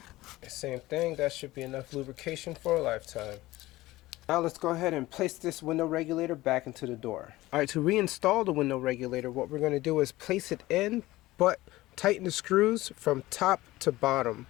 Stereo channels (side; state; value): right; quieter; 18.0 dB